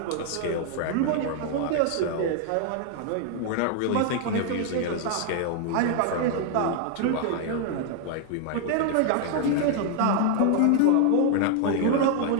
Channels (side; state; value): both; different; correlation 0.00